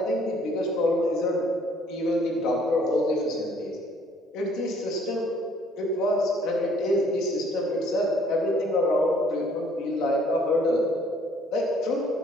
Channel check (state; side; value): normal; both; correlation 0.61